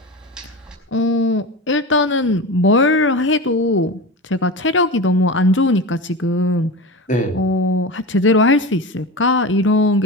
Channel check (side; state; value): both; normal; correlation 0.26